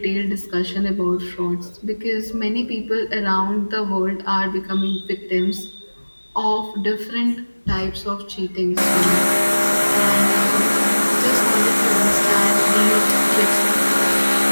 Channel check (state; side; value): inverted; both; correlation -1.00